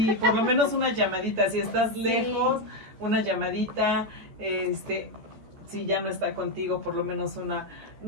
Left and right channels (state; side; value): late; left; 14 ms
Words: por lo menos una llamadita, si estás Sí. lejos, una llamadita, si ya no está contigo, por lo menos una,